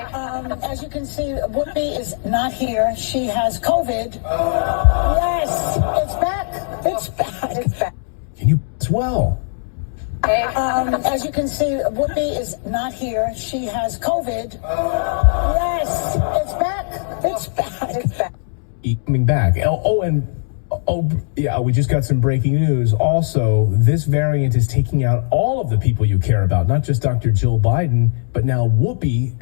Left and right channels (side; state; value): right; silent; 66 dB below the other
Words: you can see, Whoopi is not here. She has COVID. Yes, it's back. It's back. It's back. Can you as well? As you can see, Whoopi is not here. She has COVID. Yes, it's back. It's back. It's back. Coming back. We just got some breaking news. Also, this variant is taking out all of the people you care about, not just Dr. Jill Biden, but now Whoopi